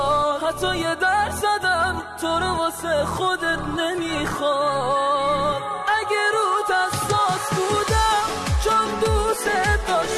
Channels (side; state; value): both; identical; correlation 1.00